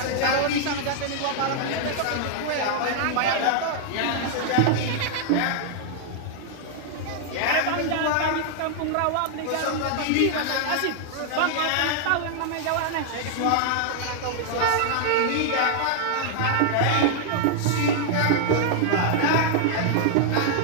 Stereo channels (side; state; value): both; different; correlation 0.00